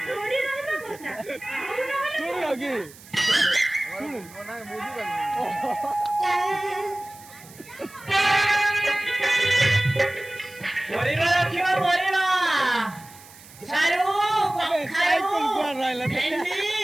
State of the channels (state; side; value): noise; right; hiss, 21 dB below the sound